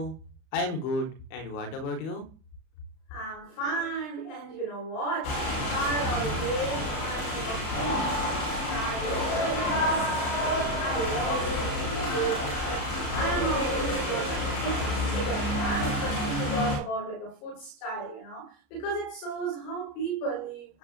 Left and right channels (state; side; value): late; right; 36 ms